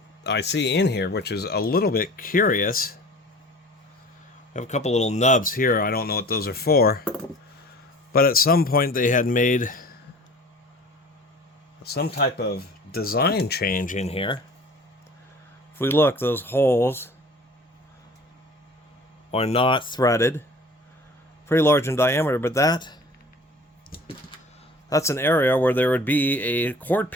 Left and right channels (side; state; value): both; normal; correlation 0.45